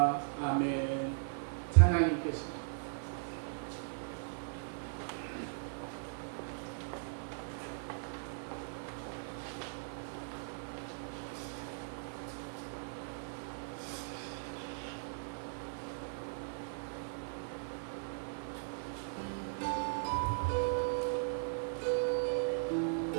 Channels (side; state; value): left; silent; 52 dB below the other